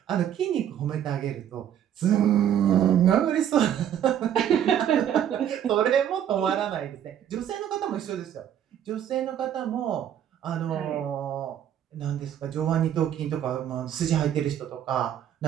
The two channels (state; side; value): quieter; left; 10.0 dB